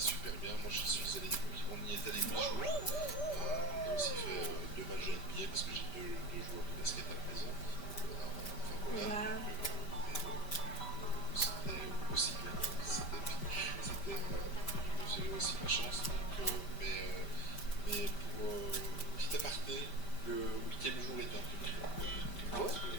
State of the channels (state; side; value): late; right; 5.1 ms